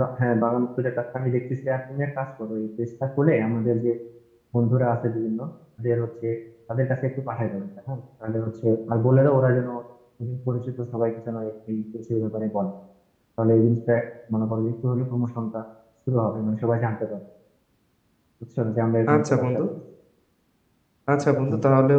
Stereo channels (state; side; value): identical; both; correlation 1.00